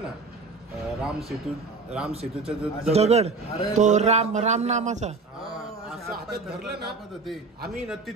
ना राम सेतूचा जो दगड, तो राम नामाचा, असं हातात धरलं ना होते. आम्ही ना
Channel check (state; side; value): quieter; left; 4.0 dB